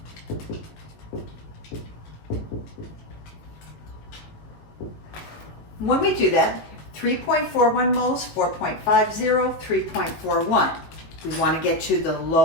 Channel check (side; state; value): right; late; 18 ms